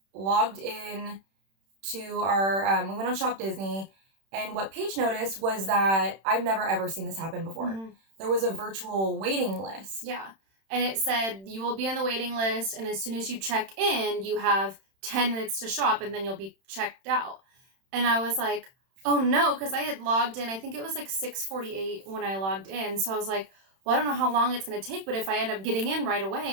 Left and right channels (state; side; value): late; left; 31 ms